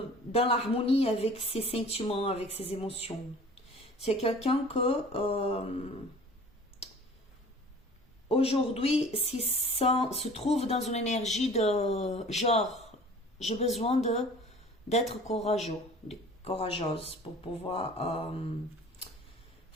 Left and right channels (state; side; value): normal; both; correlation 0.46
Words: l'harmonie avec ses sentiments, avec ses émotions. C'est quelqu'un que aujourd'hui se trouve dans une énergie de genre, j'ai besoin d'être courageuse pour pouvoir